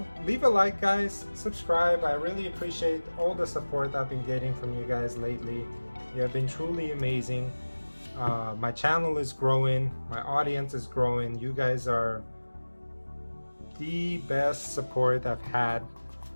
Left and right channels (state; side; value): inverted; both; correlation -1.00